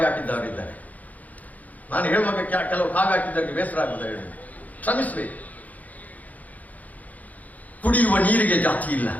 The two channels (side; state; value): right; late; 0.077 ms